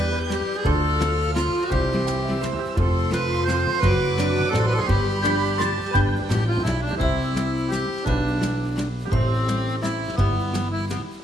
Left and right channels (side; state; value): both; normal; correlation 0.78